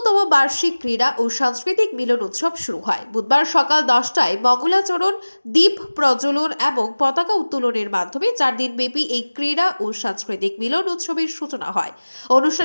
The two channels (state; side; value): inverted; both; correlation -1.00